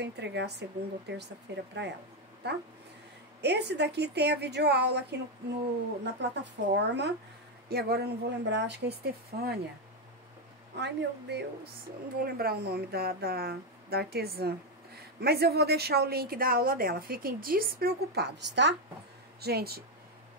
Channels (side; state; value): both; normal; correlation 0.06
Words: entregar segunda ou terça-feira pra ela, tá? Esse daqui tem a videoaula aqui na plataforma. E agora eu não vou lembrar, acho que é Estefânia. Ai, meu Deus, eu não vou lembrar o nome da artesã. Mas eu vou deixar o link da aula dela, fiquem despreocupados, tá? Gente,